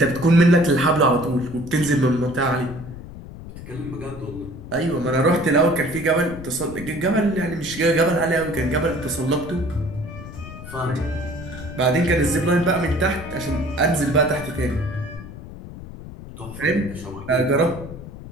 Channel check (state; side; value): noise; left; rumble, 13 dB below the sound